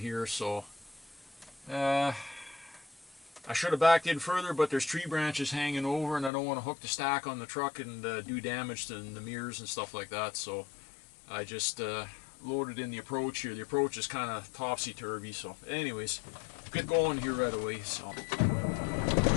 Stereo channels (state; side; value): drops out; right; at 6.3 s